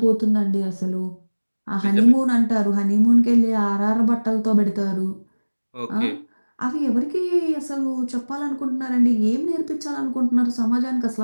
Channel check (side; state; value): both; inverted; correlation -1.00